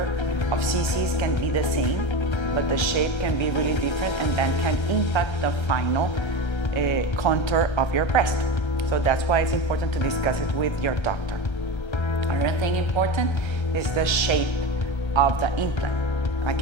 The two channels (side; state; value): right; late; 1.3 ms